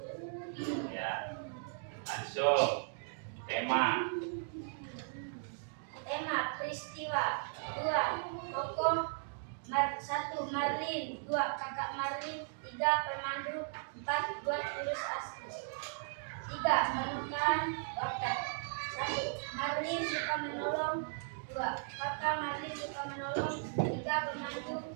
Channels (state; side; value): silent; left; digital silence